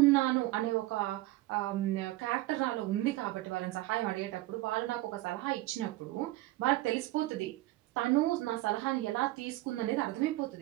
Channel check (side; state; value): left; quieter; 17.7 dB